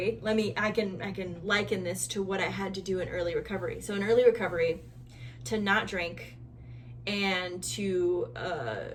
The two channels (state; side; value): identical; both; correlation 1.00